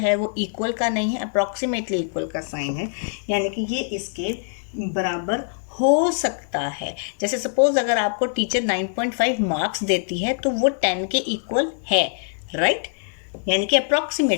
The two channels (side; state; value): right; silent; 63 dB below the other